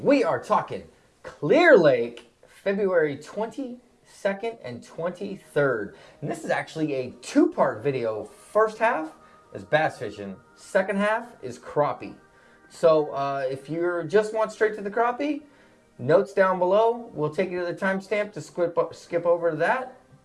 we are talking Clear Lake, February 22nd and 23rd. And this is actually a two-part video. First half is bass fishing, second half is crappie. So if you just want straight to the crappie, notes down below. We'll take you to the timestamp to skip over to that.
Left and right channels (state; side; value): identical; both; correlation 1.00